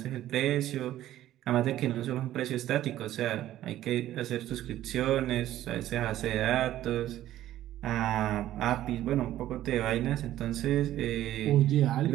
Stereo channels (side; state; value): left; quieter; 13.4 dB